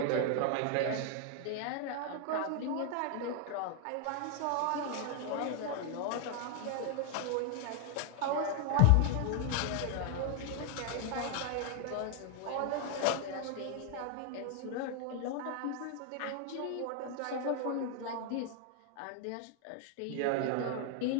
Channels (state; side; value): different; both; correlation 0.00